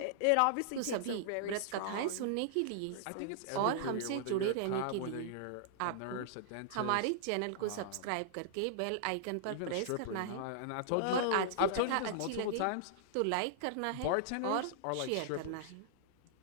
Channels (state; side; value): different; both; correlation -0.01